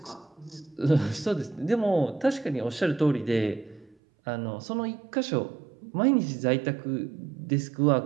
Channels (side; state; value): left; drops out; at 4.0 s